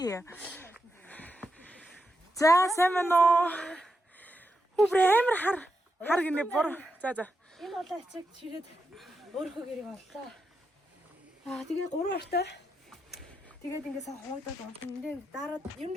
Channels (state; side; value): normal; both; correlation 0.86